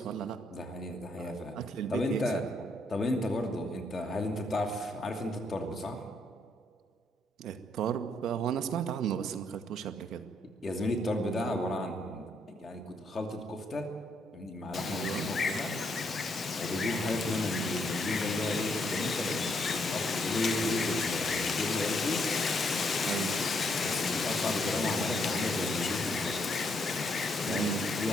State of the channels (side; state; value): both; normal; correlation 0.74